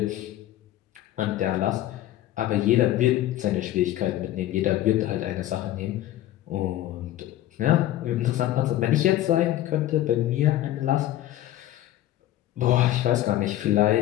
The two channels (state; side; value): quieter; right; 13.9 dB